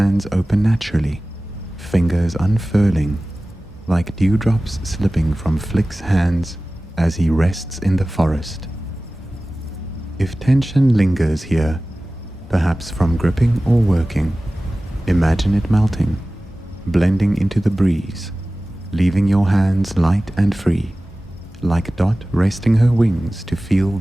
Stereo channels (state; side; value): normal; both; correlation 0.97